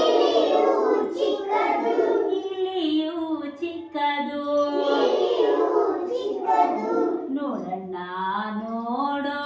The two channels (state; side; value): identical; both; correlation 1.00